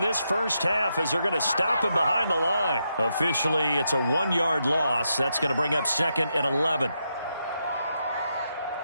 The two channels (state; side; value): inverted; both; correlation -0.83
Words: this first half as they're going to stop him behind the line. Officially, it's a 1-yard loss. That's going to bring up 2nd and 11.